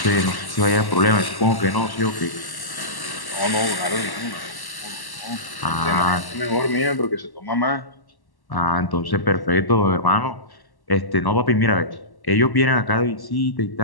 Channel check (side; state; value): right; late; 1.1 ms